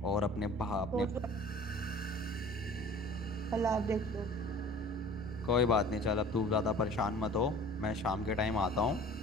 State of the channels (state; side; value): normal; both; correlation 0.46